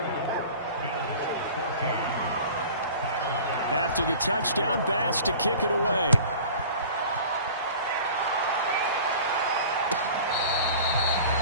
After the touchdown, Bass to kick it away.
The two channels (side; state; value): both; inverted; correlation -0.42